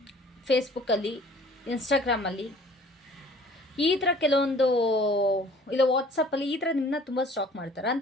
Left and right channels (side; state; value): both; normal; correlation 0.51